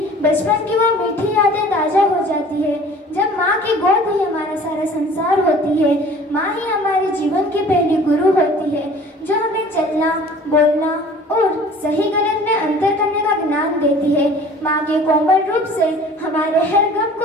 बचपन की वो मीठी यादें ताजा हो जाती है। जब माँ की गोद ही हमारा सारा संसार होती है, माँ ही हमारे जीवन की पहली गुरु होती है, जो हमें चलना, बोलना और सही गलत में अंतर करने का ज्ञान देती है। माँ के कोमल रूप से हमारे हर गम को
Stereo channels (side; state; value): both; normal; correlation 0.47